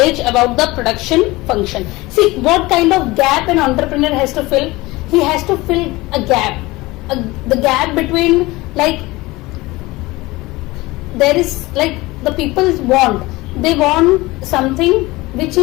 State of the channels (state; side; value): quieter; right; 20.8 dB